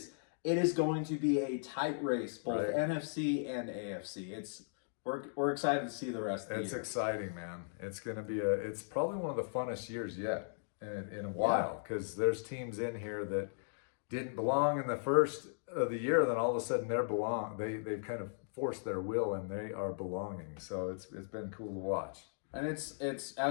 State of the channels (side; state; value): right; silent; digital silence